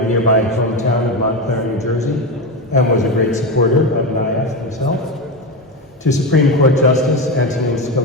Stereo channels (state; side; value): normal; both; correlation 0.16